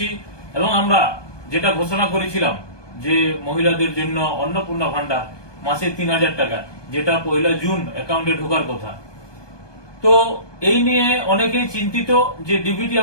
এবং আমরা যেটা ঘোষণা করেছিলাম যে মহিলাদের জন্য অন্নপূর্ণা ভান্ডার মাসে ৩,০০০ টাকা, যেটা ১ জুন অ্যাকাউন্টে ঢোকার কথা। তো এই নিয়ে অনেকেই চিন্তিত যে ডিবিটি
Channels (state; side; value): late; right; 1.2 ms